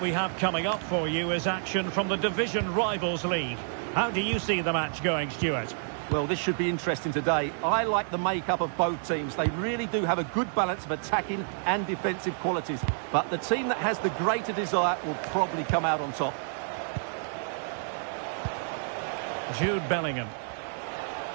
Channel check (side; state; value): left; silent; digital silence